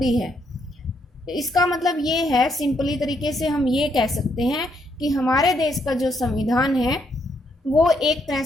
है। इसका मतलब ये है, सिंपली तरीके से हम ये कह सकते हैं कि हमारे देश का जो संविधान है वो एक तरह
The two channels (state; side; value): normal; both; correlation 0.75